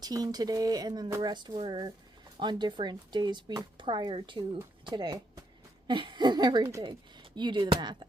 today, and then the rest were on different days prior to today and everything. You do the math.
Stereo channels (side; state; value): both; normal; correlation 0.77